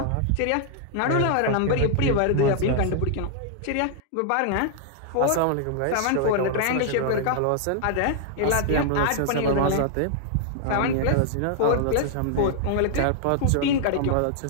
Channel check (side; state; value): both; different; correlation -0.01